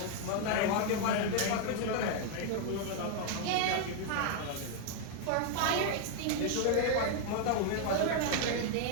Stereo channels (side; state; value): both; different; correlation 0.00